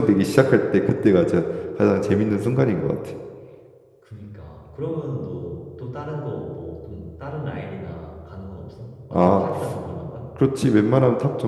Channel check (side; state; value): both; identical; correlation 1.00